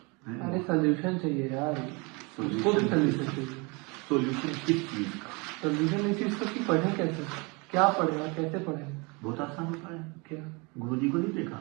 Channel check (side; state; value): left; quieter; 28.8 dB